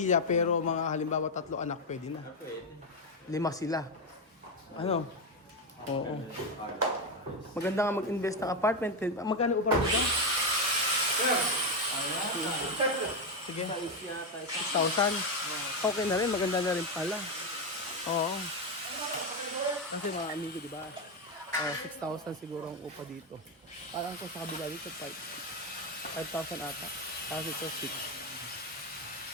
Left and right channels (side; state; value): both; normal; correlation 0.09